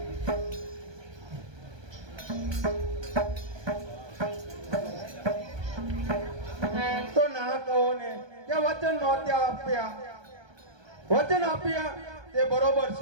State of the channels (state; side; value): late; left; 1.2 ms